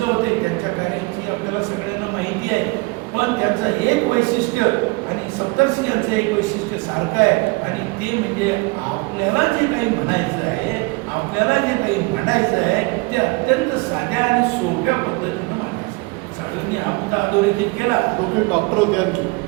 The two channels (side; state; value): left; quieter; 26.8 dB